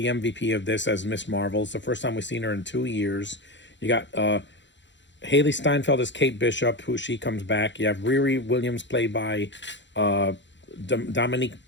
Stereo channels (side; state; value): right; late; 0.53 ms